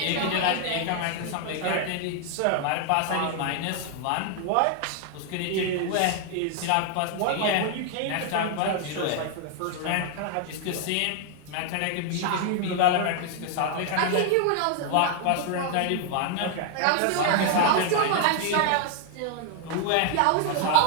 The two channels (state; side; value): different; both; correlation 0.00